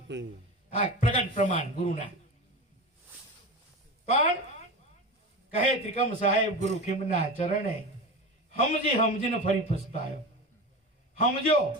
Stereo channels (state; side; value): normal; both; correlation 0.26